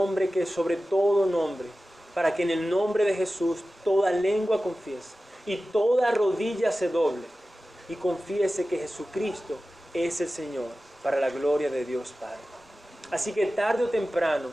que es sobre todo nombre, para que en el nombre de Jesús toda lengua confiese y toda rodilla se doble y confiese que Jesucristo es el Señor, para la gloria de Dios Padre. Así que tarde o temprano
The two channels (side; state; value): both; normal; correlation 0.95